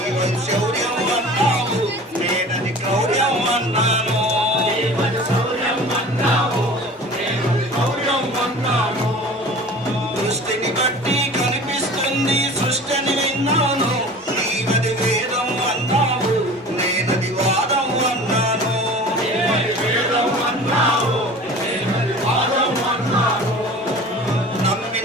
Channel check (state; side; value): normal; both; correlation 0.41